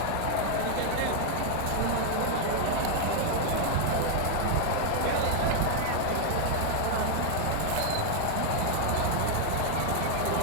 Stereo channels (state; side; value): different; both; correlation 0.00